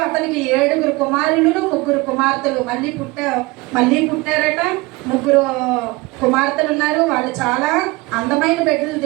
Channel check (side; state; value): left; quieter; 23.0 dB